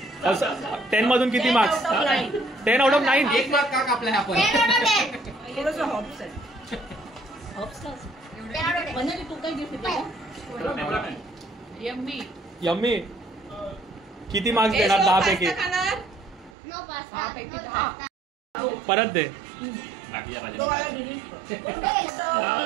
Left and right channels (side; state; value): left; drops out; at 16.6 s